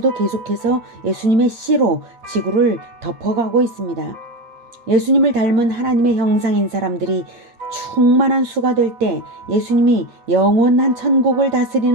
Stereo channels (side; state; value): left; late; 8.9 ms